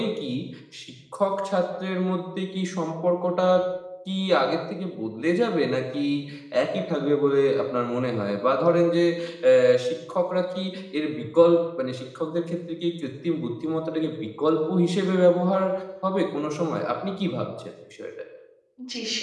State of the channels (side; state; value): both; identical; correlation 1.00